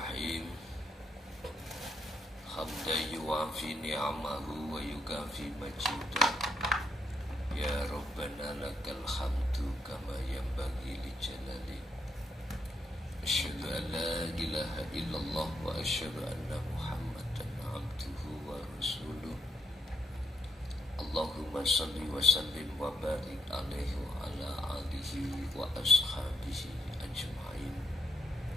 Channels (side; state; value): both; normal; correlation 0.77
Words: Hamdan yuwafi ni'amahu wa yukafi majidah. Ya Rabbana lakal hamdu kama yanbaghi li jalali. Asyhadu an la ilaha illallah wa asyhadu anna Muhammadan abduhu wa rasuluh. Allahumma salli wa sallim wa barik alaihi wa ala alihi wa ashabihi ajma'in.